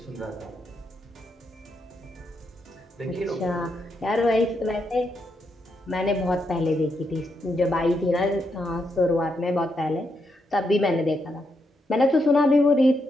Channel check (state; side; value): normal; both; correlation 0.81